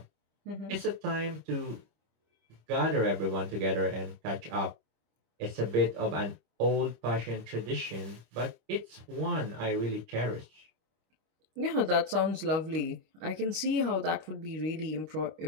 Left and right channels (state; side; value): late; left; 25 ms